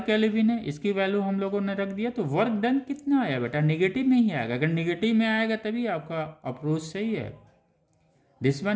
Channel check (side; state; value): both; identical; correlation 1.00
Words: केल्विन है, इसकी वैल्यू हम लोगों ने रख दिया। तो वर्क डन कितना आया बेटा? निगेटिव में ही आएगा। अगर निगेटिव में आएगा तभी आपका अप्रोच सही है। This